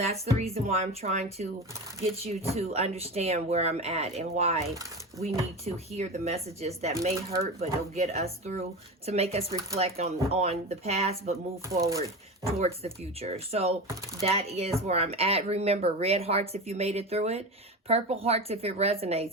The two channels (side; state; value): both; normal; correlation 0.25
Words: the reason why I'm trying to get you to understand where I'm at and why we need to hear the messages that may hurt, but it'll get us through to make us reflect on the past, but move forward towards the future. So that is where I'm at. Remember, red hearts if you made it through it, purple hearts if it